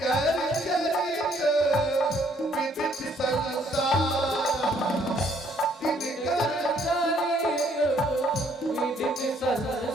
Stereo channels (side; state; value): both; normal; correlation 0.65